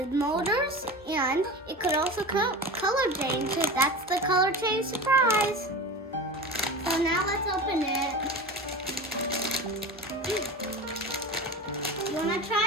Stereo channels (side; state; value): both; normal; correlation 0.29